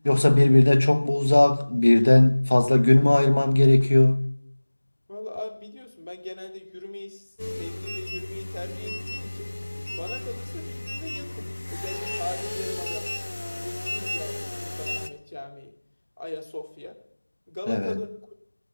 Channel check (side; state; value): both; inverted; correlation -1.00